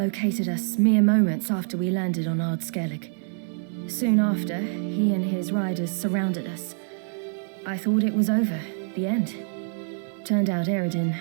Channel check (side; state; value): left; silent; 61 dB below the other